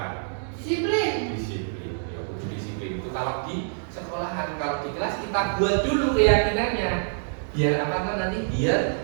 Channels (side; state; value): left; silent; digital silence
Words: Disiplin. Disiplin. Ya, disiplin itu kalau di sekolahan, kalau di kelas kita buat dulu keyakinannya. Biar apa kan nanti?